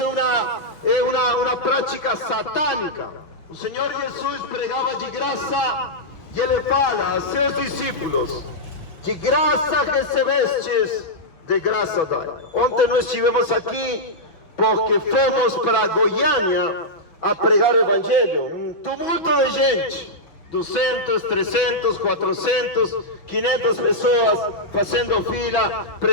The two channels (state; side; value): late; right; 6.1 ms